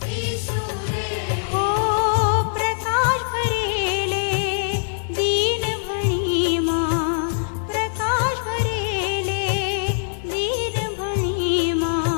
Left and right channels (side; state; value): right; silent; digital silence